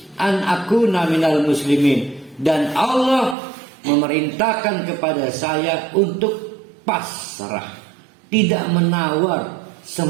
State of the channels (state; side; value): drops out; left; at 3.4 s